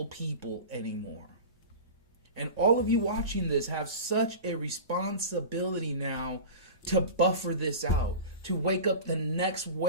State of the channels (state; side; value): inverted; both; correlation -0.32